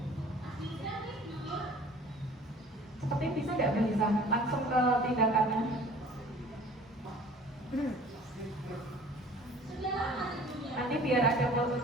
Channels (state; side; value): normal; both; correlation 0.48